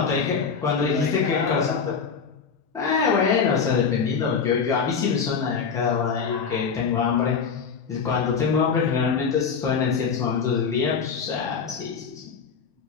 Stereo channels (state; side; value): quieter; right; 6.0 dB